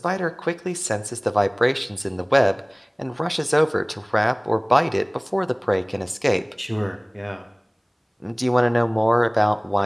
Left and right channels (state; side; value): identical; both; correlation 1.00